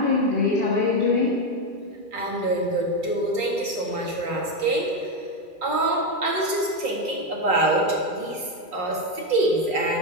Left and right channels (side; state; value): left; late; 2.4 ms